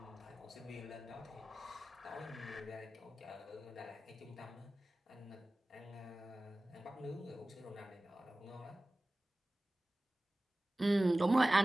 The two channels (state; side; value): normal; both; correlation 0.97